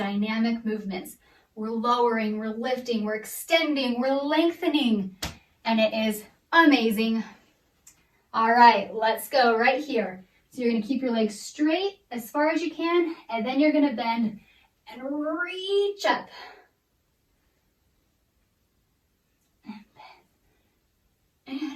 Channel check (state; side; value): identical; both; correlation 1.00